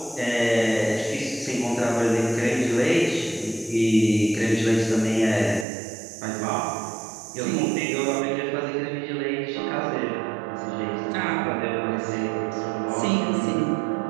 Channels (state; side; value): drops out; left; at 5.7 s